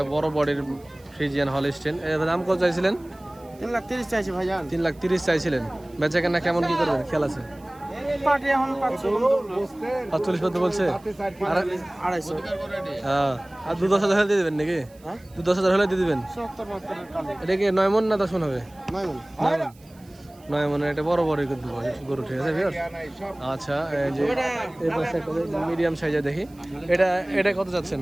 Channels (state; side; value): noise; right; hiss, 28 dB below the sound